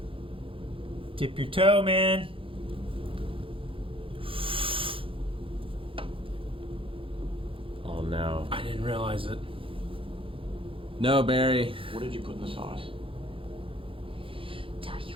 Dip your toe, man. Oh no. I didn't realize it. No, Barry. What did you put in the sauce? Tell you,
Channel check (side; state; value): left; late; 0.26 ms